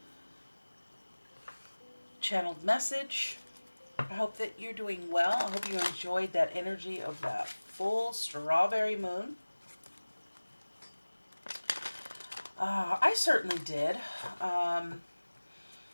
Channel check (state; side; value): inverted; both; correlation -1.00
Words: channeled message. I hope that you're doing well. I hope you enjoyed that energy of that full strawberry moon. I certainly did. I